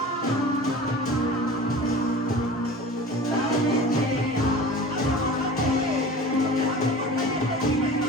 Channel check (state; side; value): normal; both; correlation 0.38